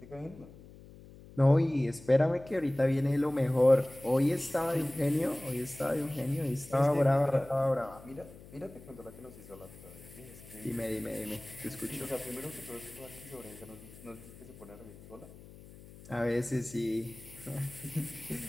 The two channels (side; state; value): left; noise; hum, 19 dB below the sound